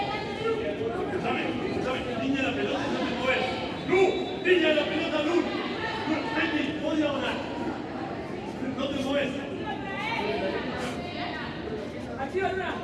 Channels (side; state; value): both; identical; correlation 1.00